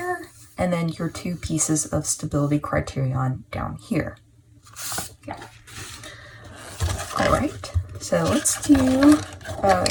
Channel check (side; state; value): both; identical; correlation 1.00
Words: and then your 2 pieces of stability criterion down here. Okay. All right, so let's do,